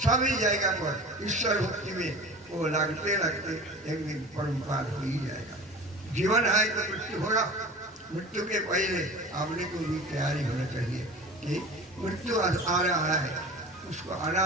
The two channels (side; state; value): both; normal; correlation 0.38